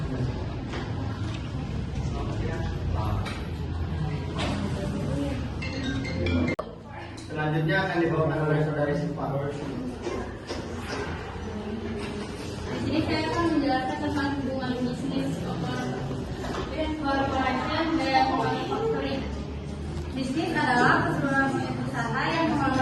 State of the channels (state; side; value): identical; both; correlation 1.00